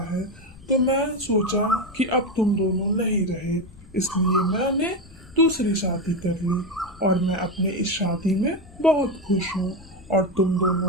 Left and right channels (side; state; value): left; noise; rumble, 22 dB below the sound